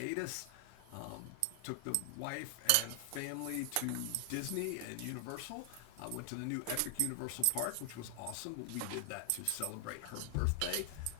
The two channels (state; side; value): different; both; correlation 0.00